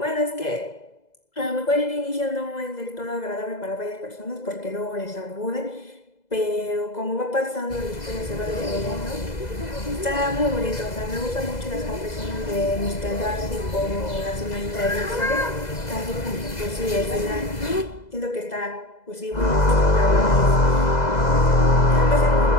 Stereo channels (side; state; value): right; late; 2.0 ms